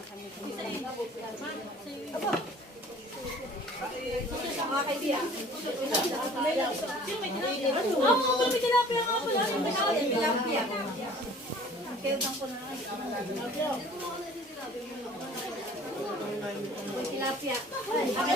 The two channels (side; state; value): both; normal; correlation 0.50